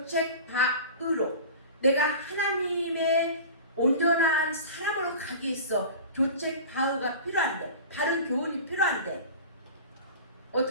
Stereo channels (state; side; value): inverted; both; correlation -0.36